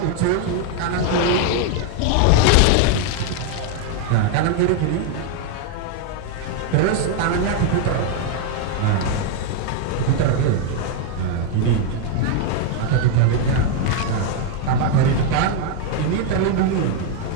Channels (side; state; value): both; different; correlation 0.01